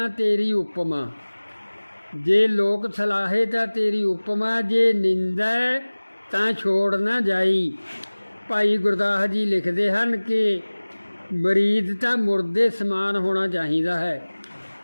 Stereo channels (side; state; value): both; inverted; correlation -1.00